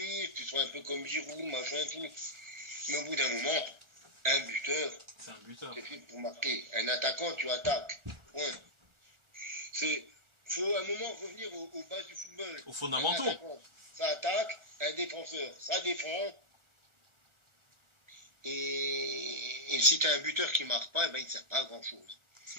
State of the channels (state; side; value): late; left; 1.4 ms